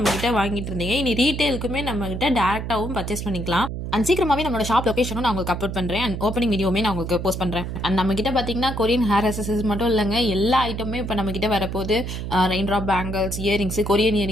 வாங்கிட்டு இருந்தீங்க. இனி ரீட்டைலுக்குமே நம்மக்கிட்ட டேரெக்டாகவும் பர்ச்சேஸ் பண்ணிக்கலாம். அண்ட் சீக்கிரமாகவே நம்மளோட ஷாப் லொக்கேஷனும் நான் உங்களுக்கு அப்லோட் பண்ணுறேன். அண்ட் ஓப்பனிங் வீடியோமே நான் உங்களுக்கு போஸ்ட் பண்ணுறேன். அண்ட் நம்மக்கிட்ட பார்த்தீங்கன்னா கொரியன் ஹேர் அசசரிஸ் மட்டும் இல்லைங்க, எல்லா ஐட்டமுமே இப்போ நம்மக்கிட்ட வரப்போது. Rain drop bangles, earrings, Korean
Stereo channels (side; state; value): right; noise; hum, 5 dB below the sound